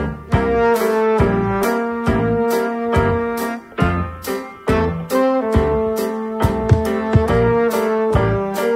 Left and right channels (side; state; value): both; identical; correlation 1.00